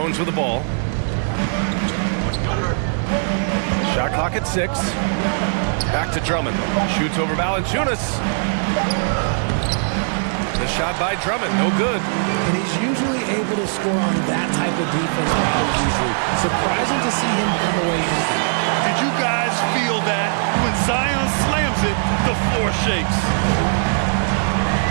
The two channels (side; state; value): left; silent; digital silence